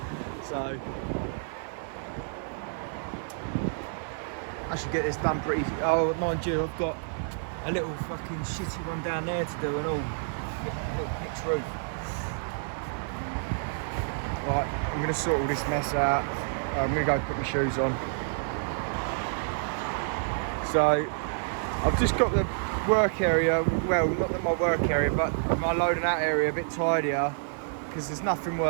So I should get this done pretty. Oh, mind you, I've got a little fucking shitty one down there to do and all. A little pitch roof. Right, I'm going to sort all this mess out. I'm going to go put my shoes on. So I've just got the work area, well, not my work area, but my loading out area a bit tidier, because there's nothing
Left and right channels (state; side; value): silent; left; 57 dB below the other